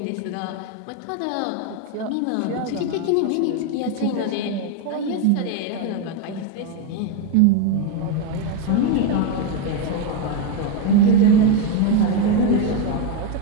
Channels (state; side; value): different; both; correlation 0.02